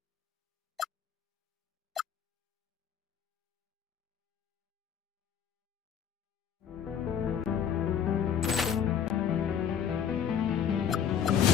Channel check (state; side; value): quieter; right; 8.4 dB